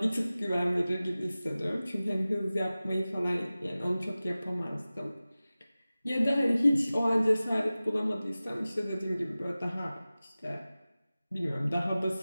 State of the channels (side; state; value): both; inverted; correlation -0.97